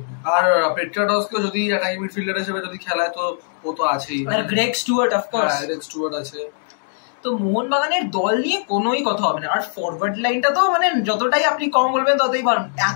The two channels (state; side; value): silent; right; digital silence